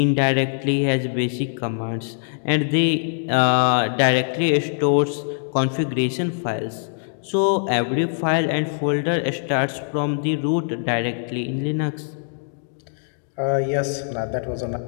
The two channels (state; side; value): silent; right; digital silence